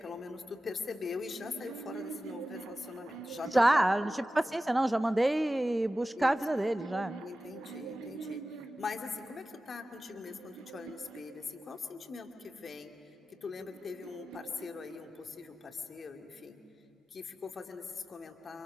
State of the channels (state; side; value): normal; both; correlation 0.94